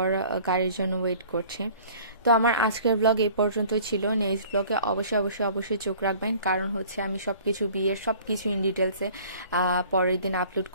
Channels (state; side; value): inverted; both; correlation -0.49